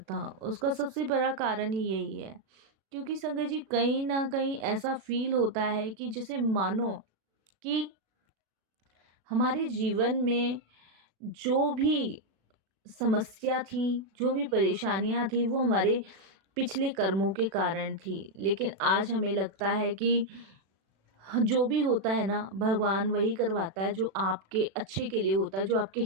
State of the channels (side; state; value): left; late; 36 ms